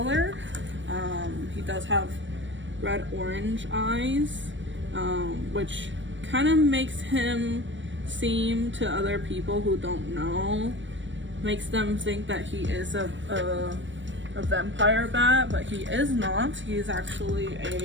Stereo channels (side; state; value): left; late; 0.54 ms